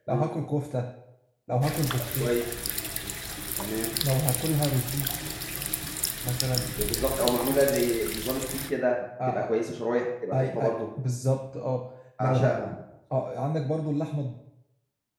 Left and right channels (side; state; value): both; identical; correlation 1.00